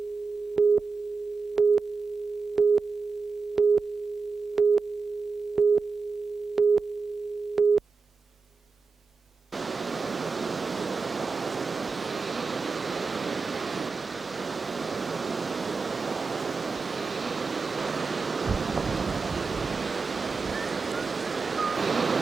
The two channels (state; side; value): quieter; left; 4.6 dB